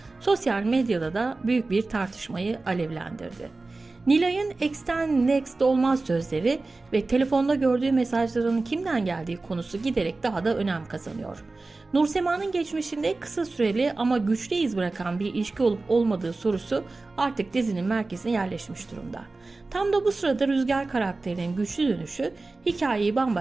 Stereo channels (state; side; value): quieter; left; 3.4 dB